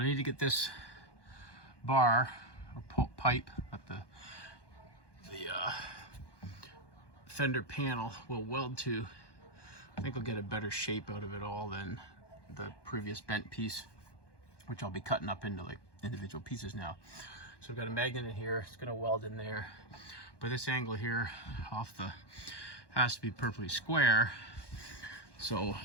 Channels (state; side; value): late; right; 1.2 ms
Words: need to get this bar or pipe that the fender panel will weld to. I think I'll get a better shape out of it all than the previous bent piece, which I'll be cutting up into like individual pieces now. So I've got a magnet in here, it's gonna weld in there. But this angle here off the has to be perfectly square. So